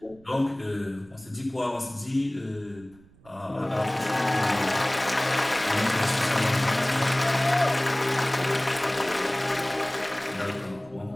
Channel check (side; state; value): right; noise; rumble, 26 dB below the sound